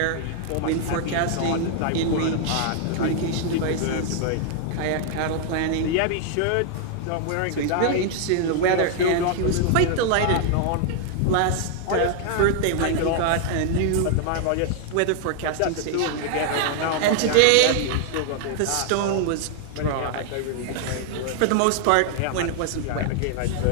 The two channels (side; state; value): both; different; correlation 0.00